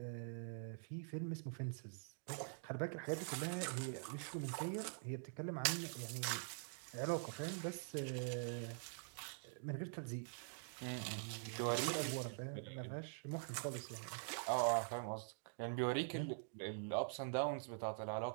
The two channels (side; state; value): left; silent; digital silence